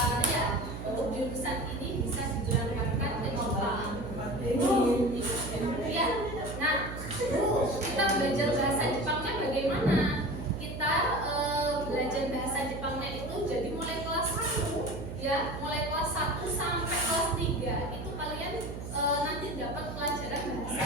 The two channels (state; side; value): noise; right; hum, 8 dB below the sound